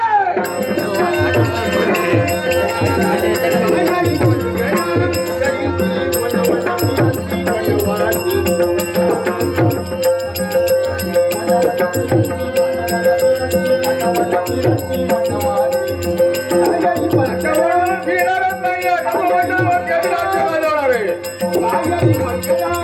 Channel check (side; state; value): both; identical; correlation 1.00